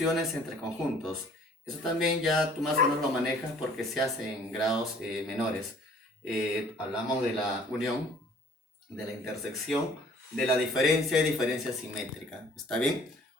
entre conjuntos. Eso también ya tú más o menos lo manejas porque se hace en grados menores. Hablamos de la unión, de la intersección, de la diferencia y diferencia simétrica. ¿Está bien?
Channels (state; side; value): normal; both; correlation 0.54